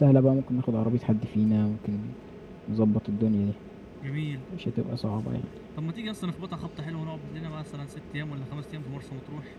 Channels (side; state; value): both; identical; correlation 1.00